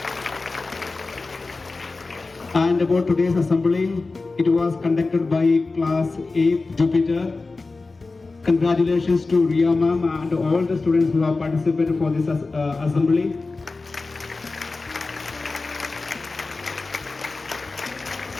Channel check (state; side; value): quieter; right; 3.7 dB